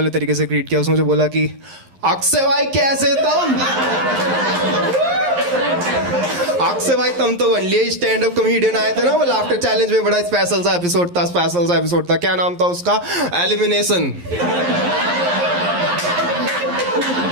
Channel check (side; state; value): left; late; 11 ms